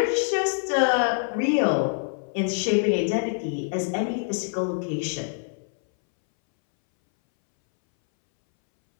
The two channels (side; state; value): right; silent; 62 dB below the other